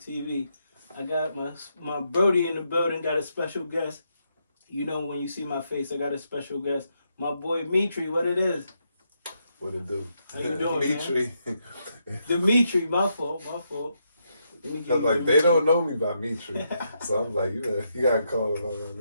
TV. I got my Brody in the building, got a special guest. You know when you see my face, I got a special guest. My boy Dimitry, what it is? What it do? How you doing, Dimitry. Dimitry, my fault. I'm like, they don't know me by Dimitry. So I'm like, you gotta call him by my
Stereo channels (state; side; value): inverted; both; correlation -0.80